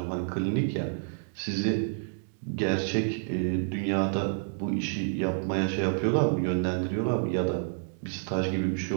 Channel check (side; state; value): left; silent; digital silence